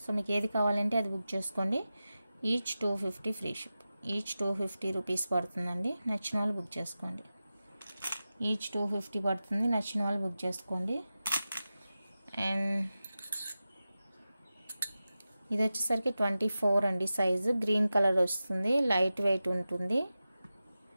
సో మీకు ఏది కావాలంటే అది బుక్ చేసుకోండి. Each 250 free ship. Each 250 rupees పడుతుందండి. నచ్చిన వాళ్ళు బుక్ చేసుకోండి. ఈచ్ 250 పడుతుంది, నచ్చిన వాళ్ళు బుక్ చేసుకోండి. అండ్ ఇది వచ్చేసరికి 24 అండి సైజు. గ్రీన్ కలర్ వస్తుంది, లైట్ వెయిట్ ఉంటుంది.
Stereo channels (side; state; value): both; inverted; correlation -0.94